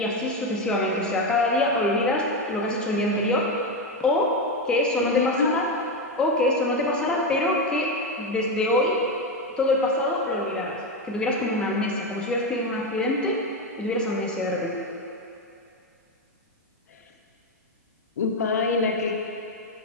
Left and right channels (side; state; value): both; normal; correlation 0.11